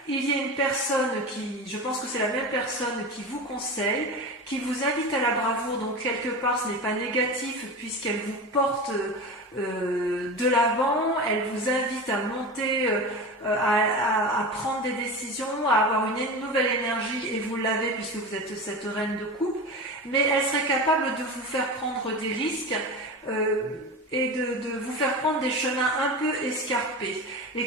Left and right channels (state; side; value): normal; both; correlation 0.27